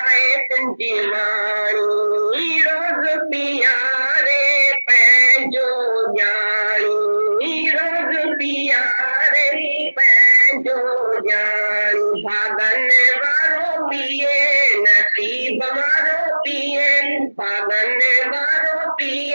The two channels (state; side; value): inverted; both; correlation -1.00